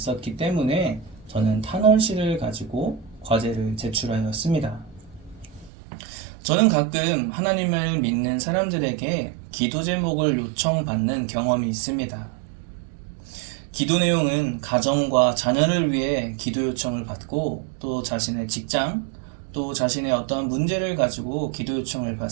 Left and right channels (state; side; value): drops out; left; at 5.7 s